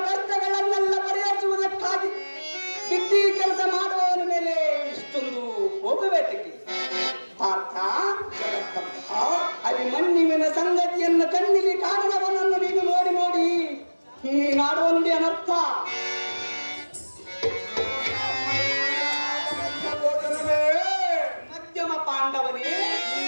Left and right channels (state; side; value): inverted; both; correlation -1.00